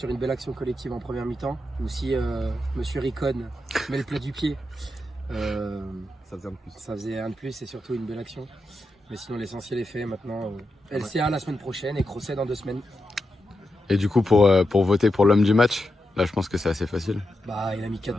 une belle action collective en première mi-temps, où si Monsieur Ricon met le plat du pied, ça faisait un de plus et surtout une belle action. Mais sinon l'essentiel est fait maintenant. LCA la semaine prochaine et Crosset dans 2 semaines. Et du coup pour voter pour l'homme du match, là je pense que c'est assez facile. Bah il a mis 4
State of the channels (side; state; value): both; normal; correlation 0.87